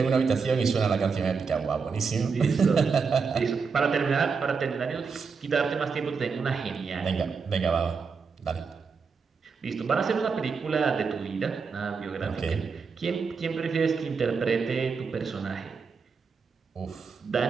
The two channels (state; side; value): quieter; left; 5.4 dB